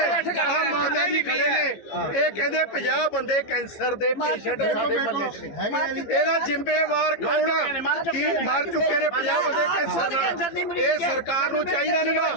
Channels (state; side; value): late; right; 15 ms